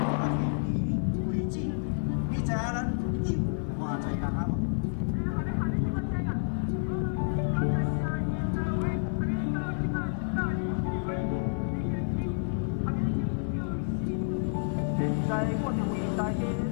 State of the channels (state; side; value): silent; right; 58 dB below the other